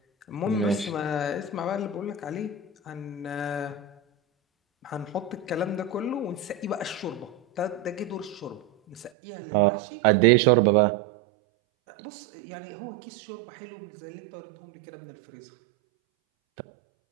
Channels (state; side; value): drops out; left; at 9.1 s